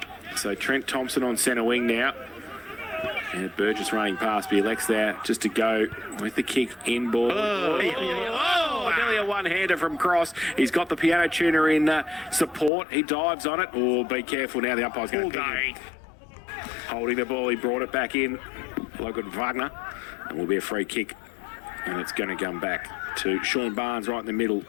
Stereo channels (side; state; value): right; drops out; at 12.7 s